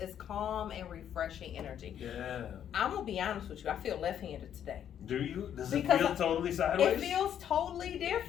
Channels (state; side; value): quieter; right; 9.6 dB